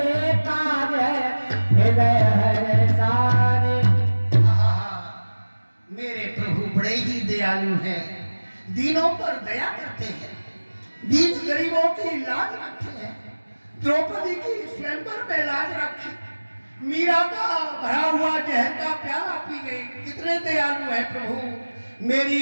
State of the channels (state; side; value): inverted; both; correlation -1.00